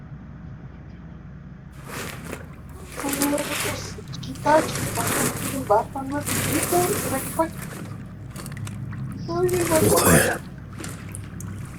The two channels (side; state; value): both; identical; correlation 1.00